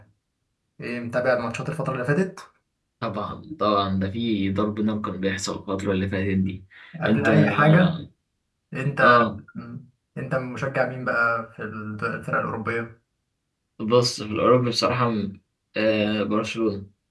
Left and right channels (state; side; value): identical; both; correlation 1.00